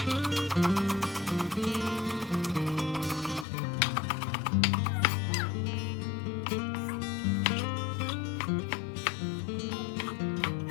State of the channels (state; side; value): drops out; right; at 3.5 s